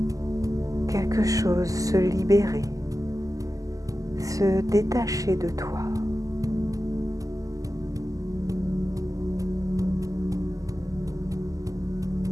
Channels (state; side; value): late; left; 0.17 ms